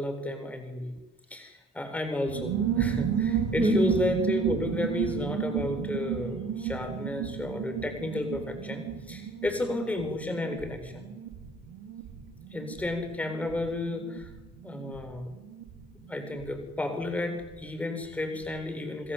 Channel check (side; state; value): both; normal; correlation 0.57